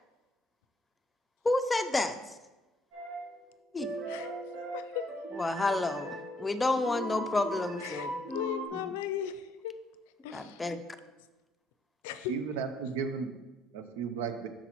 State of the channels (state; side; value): normal; both; correlation 0.69